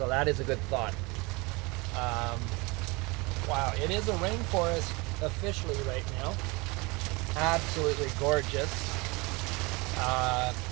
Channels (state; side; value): quieter; left; 25.9 dB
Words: that is a good thought. Wow, it is a rainforest officially right now. Absolutely gorgeous.